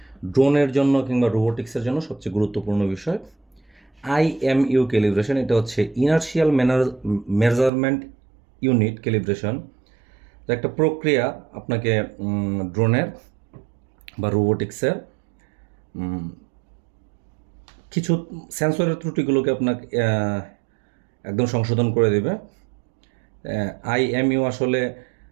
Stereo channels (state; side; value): drops out; left; at 7.7 s